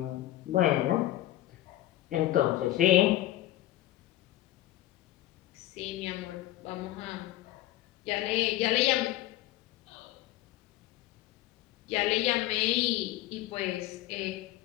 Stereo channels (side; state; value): right; quieter; 15.2 dB